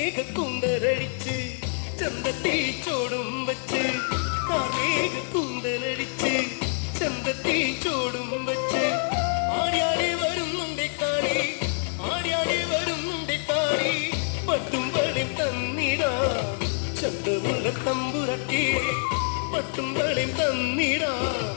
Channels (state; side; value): silent; right; 61 dB below the other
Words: കുന്തലടിച്ച് ചന്തത്തിൽ ചോടും വച്ച് കാർമേഘ കുന്തലടിച്ച് ചന്തത്തിൽ ചോടും വച്ച് ആടിയാടി വരുന്നുണ്ട് കാളി ആടിയാടി വരുന്നുണ്ട് കാളി പട്ടും വളയും തന്നിടാ ചന്തമുള്ള തമ്പുരക്കേ പട്ടും വളയും തന്നിടാ